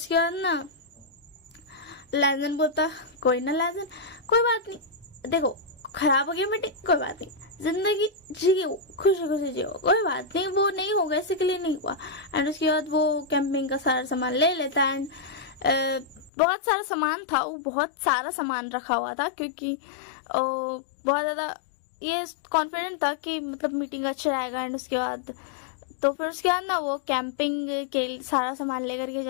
बाद ना लैंजन बोलता कोई ना लैंजन, कोई बात नहीं, देखो खराब हो गया मीटिंग, कोई बात नहीं, जिंदगी जियो, खुशी खुशी जियो, कोई बात नहीं, वो नहीं होगा, इसी के लिए नहीं हुआ। एंड उसके बाद वो कैंपिंग का सारा सामान ले लेता है, एंड बहुत सारा सामान था, वो बहुत सारा सामान रखा हुआ था, क्योंकि बहुत ज्यादा ये कॉन्फिडेंट था कि मतलब मीटिंग अच्छा रहेगा। एंड उसके बाद तो फिर उसके बाद ना वो कैंपिंग के सारा सामान लेकर के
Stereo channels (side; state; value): right; drops out; at 16.3 s